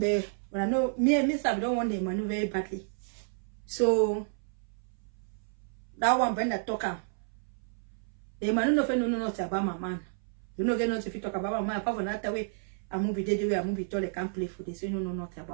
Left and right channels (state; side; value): silent; left; 57 dB below the other